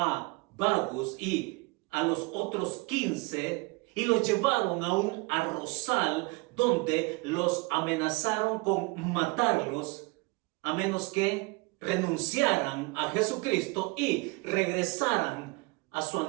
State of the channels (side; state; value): left; quieter; 26.5 dB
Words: Bagus y a los otros 15 y los llevaron a un arrozal donde los amenazaron con matarlos a menos que renunciaran a Jesucristo y regresaran a su